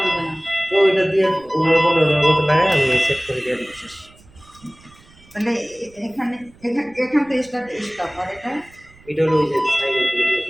না তো এটা দিয়ে ওনার বলে ওনার মতো লাগাই আমি সেট করে দিয়ে দিই শেষ তাহলে এখানে এখান থেকে স্টপ আর এটা হলো ওই যে সাইলেন্ট করে দিয়ে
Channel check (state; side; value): noise; right; rumble, 26 dB below the sound